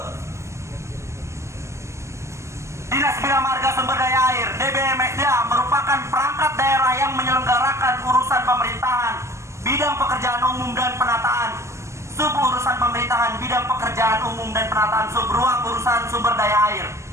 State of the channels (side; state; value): left; late; 0.14 ms